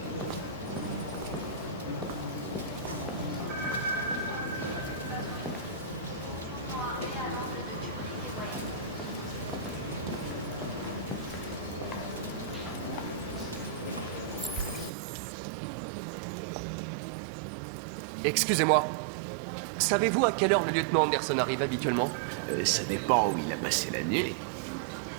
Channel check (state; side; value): drops out; left; at 14.9 s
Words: Excusez-moi. Savez-vous à quelle heure le lieutenant Anderson arrive habituellement? Ça dépend où il a passé la nuit.